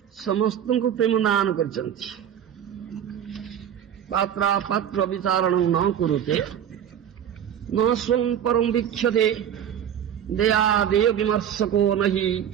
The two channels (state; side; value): quieter; left; 9.5 dB